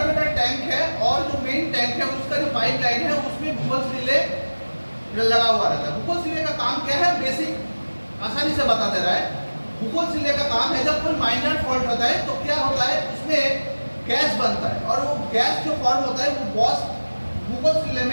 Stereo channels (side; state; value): both; inverted; correlation -1.00